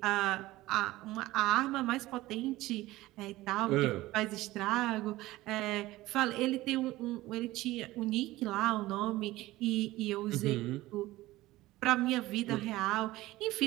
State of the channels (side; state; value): left; quieter; 17.7 dB